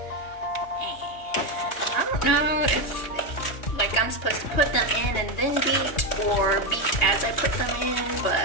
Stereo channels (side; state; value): right; late; 2.8 ms